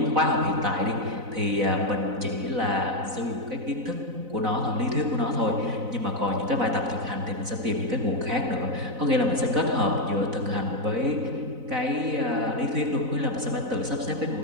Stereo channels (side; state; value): left; late; 4.0 ms